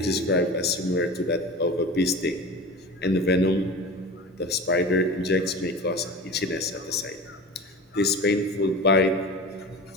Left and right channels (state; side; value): normal; both; correlation 0.32